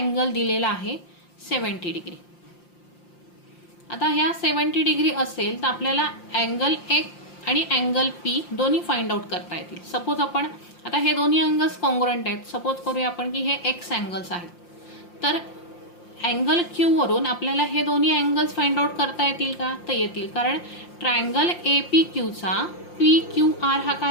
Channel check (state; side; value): late; right; 5.7 ms